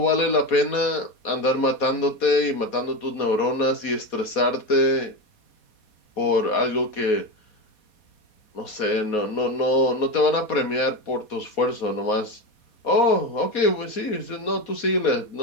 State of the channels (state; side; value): late; right; 4.2 ms